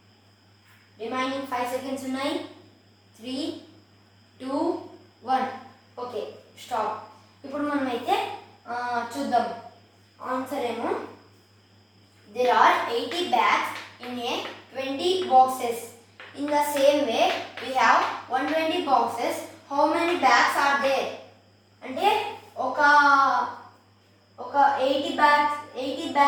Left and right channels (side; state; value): both; identical; correlation 1.00